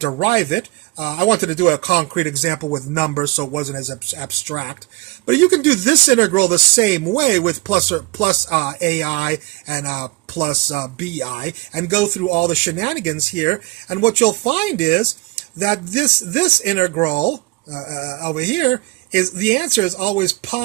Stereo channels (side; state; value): left; quieter; 22.7 dB